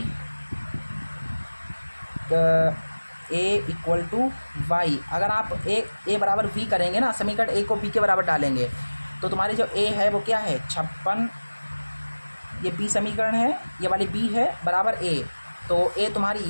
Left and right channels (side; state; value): both; inverted; correlation -1.00